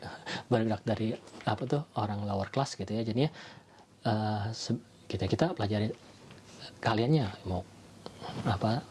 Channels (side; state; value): both; identical; correlation 1.00